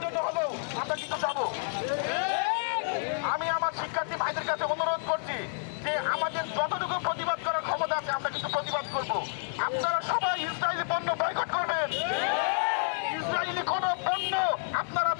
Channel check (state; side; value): silent; right; digital silence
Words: জন্য হলেও আমরা কিন্তু যাবো। আমি আমার শিক্ষার্থী ভাইদের কাছে অনুরোধ করছি যে আমাদের যতটুকু প্রতিবাদ করার ক্ষমতা আছে আমরা কিন্তু প্রতিবাদ করব। আপনারা সবাই ইসরায়েলি পণ্য বয়কট করবেন, ইসরায়েলি কোনো পণ্য আপনারা